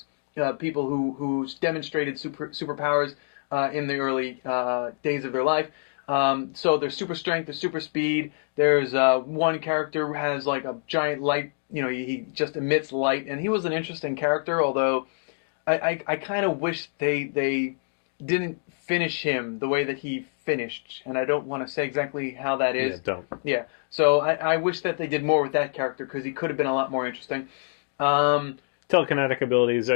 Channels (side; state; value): right; silent; digital silence